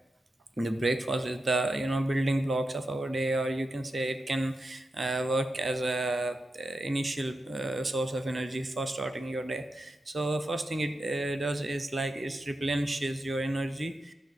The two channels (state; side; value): normal; both; correlation 0.89